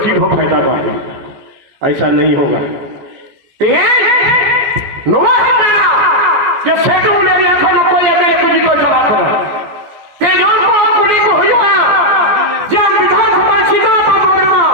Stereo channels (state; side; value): late; left; 14 ms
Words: हो फायदा बात ऐसा नहीं होगा जो सेठ ने देखा न कोई मेरे कुछ को चला कर तेजों को कुली को हुआ जब विधानसभा सीधा पावरमा